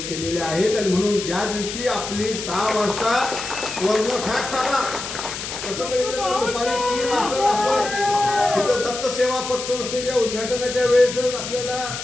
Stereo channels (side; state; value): left; noise; hiss, 7 dB below the sound